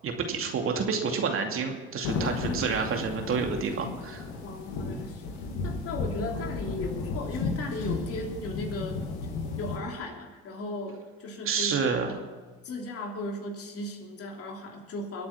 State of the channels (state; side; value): normal; both; correlation 0.24